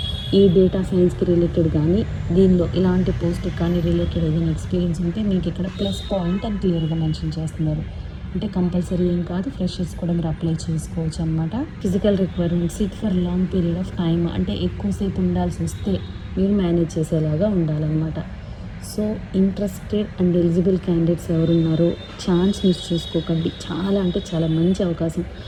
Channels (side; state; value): both; identical; correlation 1.00